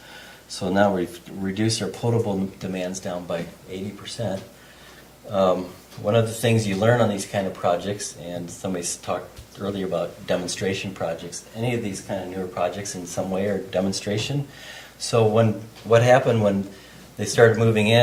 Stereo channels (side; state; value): both; identical; correlation 1.00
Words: So now we've reduced our potable demands down by 80%. One of the things you learn on these kind of projects, and somebody's talked earlier about demonstration projects, any of these kind of newer projects in some way are demonstration. So what happened when they started moving